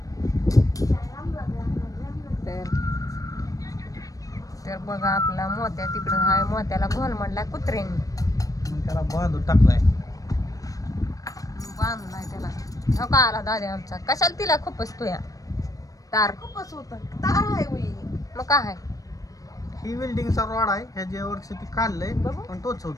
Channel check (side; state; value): right; late; 0.17 ms